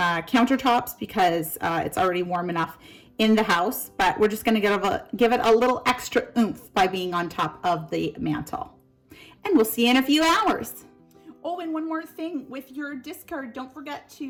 countertops because it's already warm enough in the house, but we're just going to give it a little extra oomph by being on top of the mantle. And we'll see you in a few hours. Oh, and one more thing with your discard, don't forget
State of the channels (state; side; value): identical; both; correlation 1.00